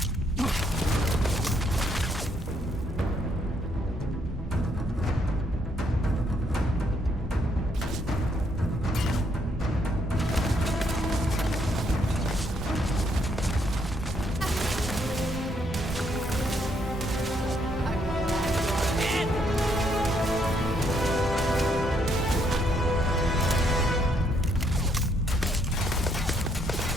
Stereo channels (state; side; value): normal; both; correlation 0.72